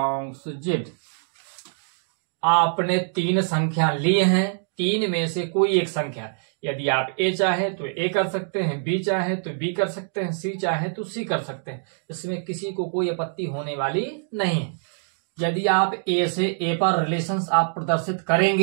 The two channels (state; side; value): silent; left; digital silence